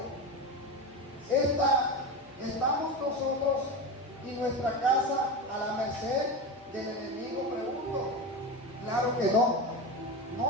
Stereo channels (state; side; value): normal; both; correlation 0.21